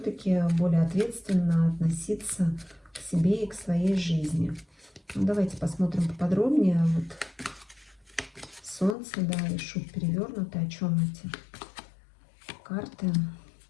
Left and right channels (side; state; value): right; drops out; at 9.0 s